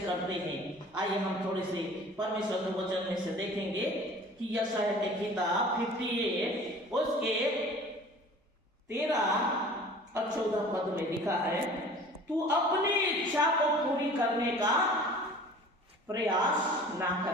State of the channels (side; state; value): both; normal; correlation 0.45